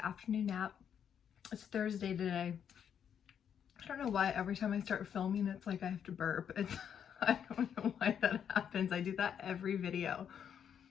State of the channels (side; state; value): right; quieter; 8.4 dB